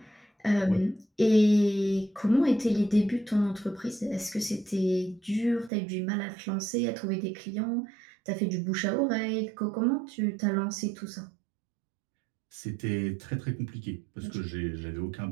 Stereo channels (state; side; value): drops out; left; at 5.7 s